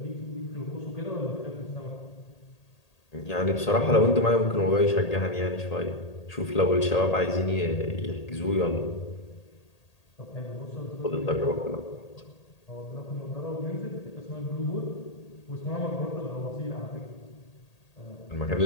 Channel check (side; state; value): right; late; 1.8 ms